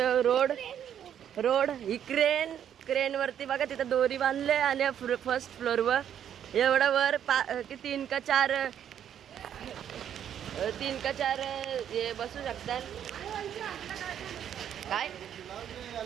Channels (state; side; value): quieter; left; 9.5 dB